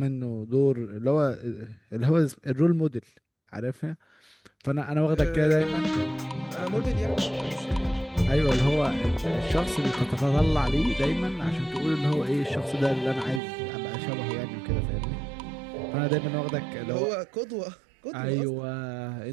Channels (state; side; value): drops out; left; at 13.4 s